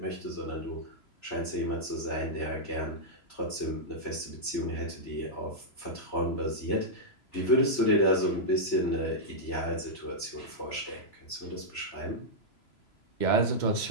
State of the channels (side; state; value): right; late; 3.0 ms